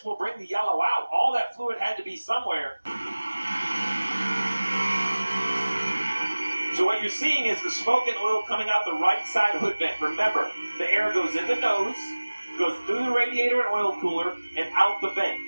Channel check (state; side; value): inverted; both; correlation -1.00